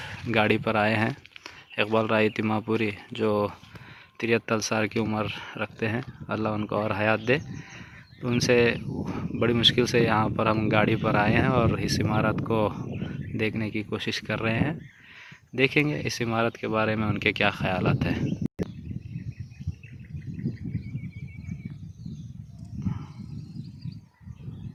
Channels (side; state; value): both; identical; correlation 1.00